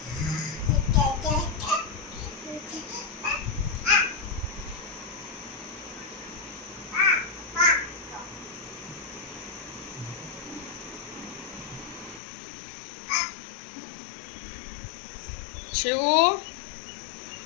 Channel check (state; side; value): drops out; right; at 12.2 s